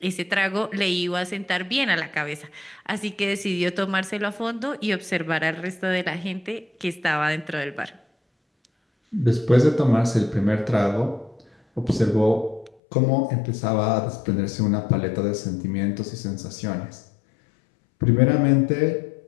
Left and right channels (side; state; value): right; drops out; at 12.8 s